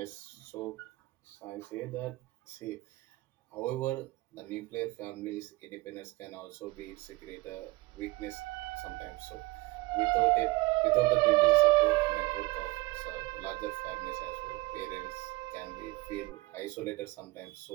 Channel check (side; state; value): left; quieter; 21.7 dB